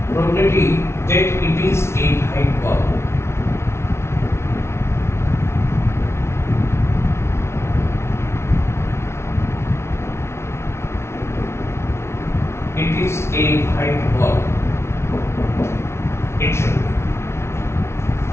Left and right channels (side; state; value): right; late; 0.13 ms